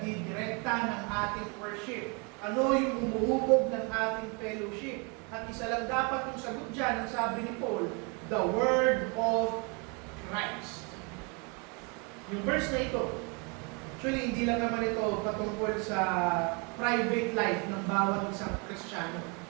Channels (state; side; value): quieter; left; 32.6 dB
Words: ng ating worship? Ano yung umuhubog ng ating fellowship? At isa lang dapat yung sagot dyan, ang sabi ni Paul, the Word of Christ. Yung verse na ito, actually hindi lang naman ito patungkol sa private life ng bawat isang Kristiyano.